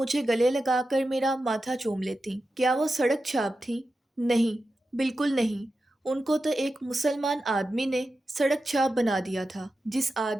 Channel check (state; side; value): normal; both; correlation 0.91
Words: گلے لگا کر میرا ماتھا چوم لیتی۔ کیا وہ سڑک چھاپ تھی؟ نہیں، بالکل نہیں۔ ان کو تو ایک مسلمان آدمی نے سڑک چھاپ بنا دیا تھا، جس